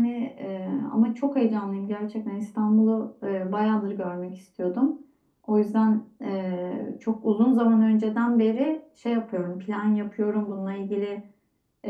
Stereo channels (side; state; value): both; identical; correlation 1.00